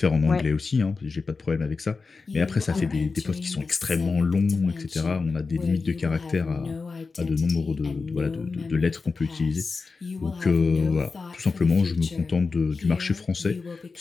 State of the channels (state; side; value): quieter; right; 4.4 dB